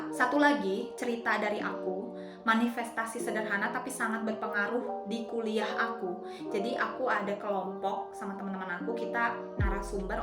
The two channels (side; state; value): both; identical; correlation 1.00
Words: Satu lagi cerita dari aku, manifestasi sederhana tapi sangat berpengaruh di kuliah aku. Jadi aku ada kelompok sama teman-teman aku, kita narasumber